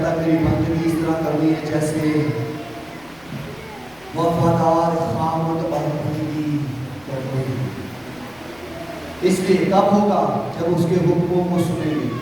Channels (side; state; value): left; noise; rumble, 28 dB below the sound